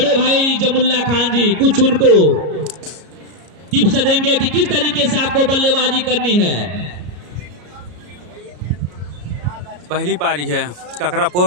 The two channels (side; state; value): left; late; 33 ms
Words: भाई जमुल्ला खान जी कुछ उनको टिप्स देंगे कि किस तरीके से आपको बल्लेबाजी करनी है। पहली पारी है